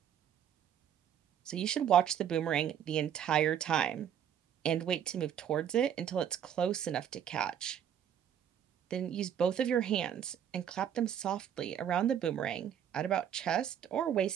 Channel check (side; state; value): left; quieter; 9.3 dB